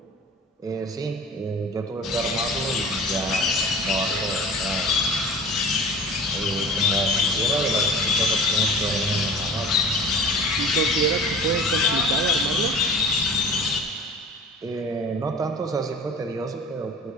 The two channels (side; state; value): both; normal; correlation 0.40